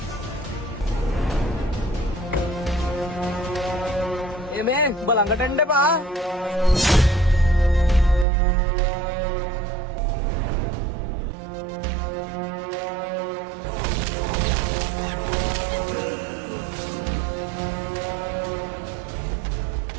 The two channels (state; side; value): drops out; left; at 8.2 s